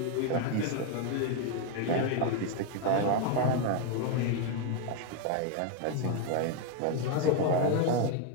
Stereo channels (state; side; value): different; both; correlation 0.01